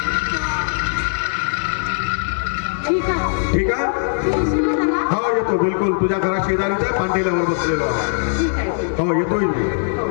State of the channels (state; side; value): silent; right; digital silence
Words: ठीक आहे. हो येतो बिलकुल. तुझ्या घरात शेजारीच्या पांढेल्यावर बसलेलो. हो येतोय मी.